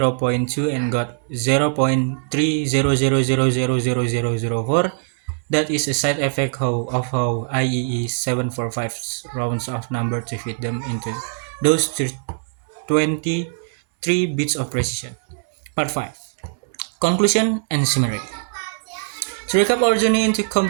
and got 0.300000004? That is a side effect of how IEE 745 rounds of number to fit them into those 23 bits of precision. Part 5. Conclusion and summary. To recap our journey into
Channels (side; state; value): left; silent; 65 dB below the other